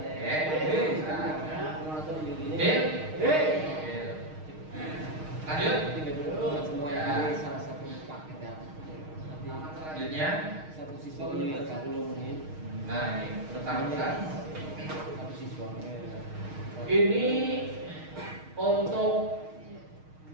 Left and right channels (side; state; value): left; late; 6.4 ms